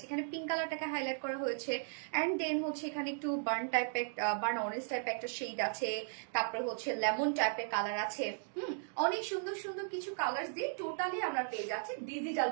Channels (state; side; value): silent; left; digital silence